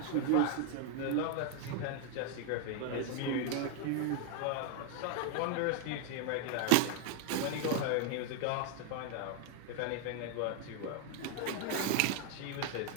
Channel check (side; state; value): both; different; correlation 0.00